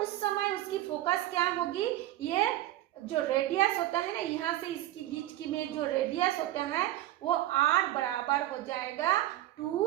उस समय उसकी फोकस क्या होगी, ये जो रेडियस होता है ना, यहाँ से इसकी बीच की में जो रेडियस होता है वो r बराबर हो जाएगा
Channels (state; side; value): quieter; left; 14.6 dB